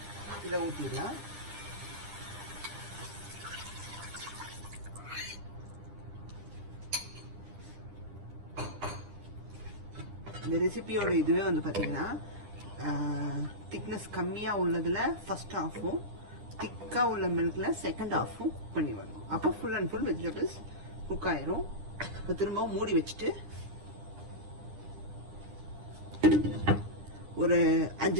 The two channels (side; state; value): left; late; 9.9 ms